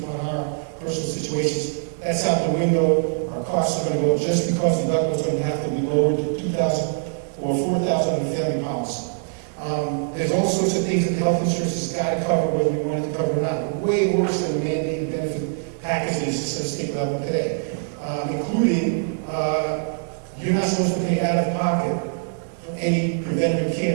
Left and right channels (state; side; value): silent; left; digital silence